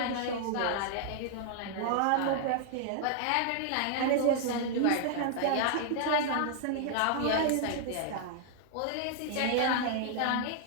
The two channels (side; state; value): both; different; correlation -0.01